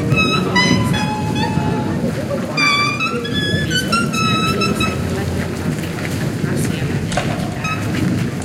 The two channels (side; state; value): both; identical; correlation 1.00